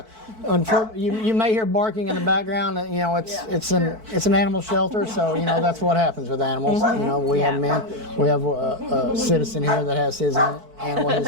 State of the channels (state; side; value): late; left; 4.5 ms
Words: Unfortunately, you may hear barking in the background. It's an animal shelter, so that's what happens with animals. We have a citizen here that has his animal.